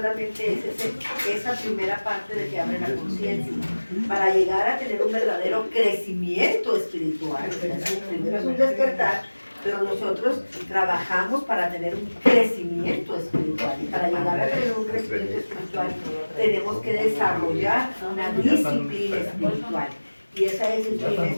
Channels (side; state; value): both; inverted; correlation -1.00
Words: es esa primera parte de que abre la conciencia. Para llegar a tener un verdadero crecimiento espiritual, primero es un despertar, pero nosotros trabajamos para tener un crecimiento espiritual. Y para llegar a tener un crecimiento espiritual, tenemos que desarrollar una disciplina espiritual. Y esa disciplina